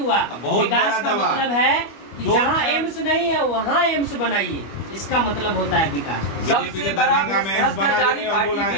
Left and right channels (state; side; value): late; right; 25 ms